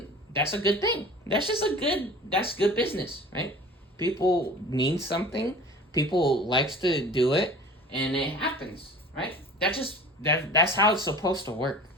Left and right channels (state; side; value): normal; both; correlation 0.41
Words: that's a good thing. That's good business, right? People need something, people likes to do it, and it happens, right? That's how it's supposed to work,